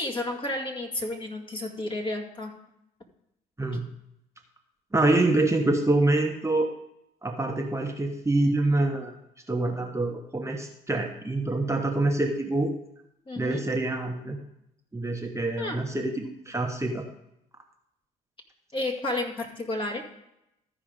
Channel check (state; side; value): normal; both; correlation 0.76